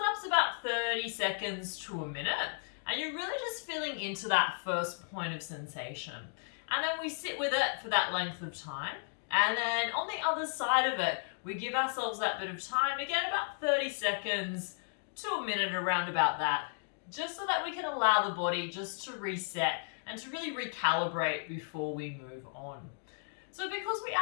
about 30 seconds to a minute, and you're really just feeling into that first point of sensation. And then we sit with it for that length of time. And then on the other side of it, we give ourselves that bit of time, again, about 30 seconds to a minute, around about that, just so that we can allow the body just to reset and to really recalibrate before we move on. So because we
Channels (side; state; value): right; silent; digital silence